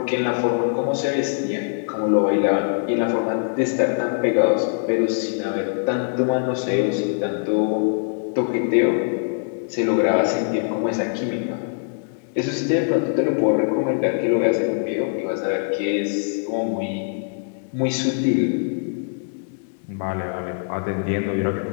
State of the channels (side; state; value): right; silent; digital silence